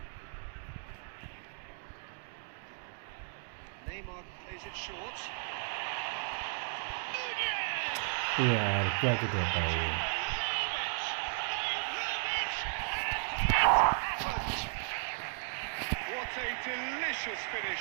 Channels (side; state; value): left; silent; 55 dB below the other